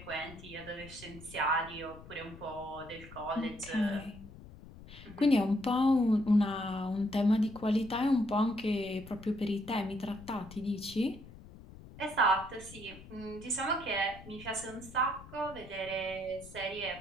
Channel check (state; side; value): noise; left; rumble, 17 dB below the sound